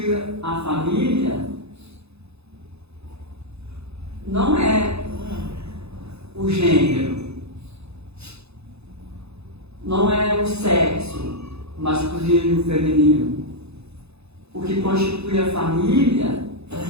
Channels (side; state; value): left; late; 0.79 ms